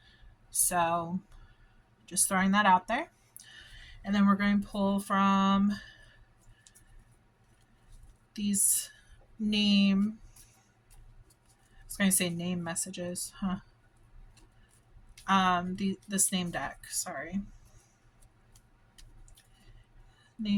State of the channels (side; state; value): both; identical; correlation 1.00